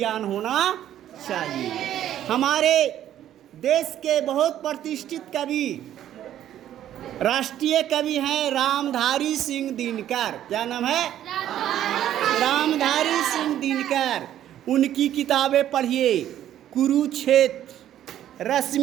होना चाहिए। हमारे देश के बहुत प्रतिष्ठित कवि, राष्ट्रीय कवि हैं रामधारी सिंह दिनकर। क्या नाम है? रामधारी सिंह दिनकर। उनकी किताबें पढ़िए, कुरुक्षेत्र,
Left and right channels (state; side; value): quieter; left; 11.6 dB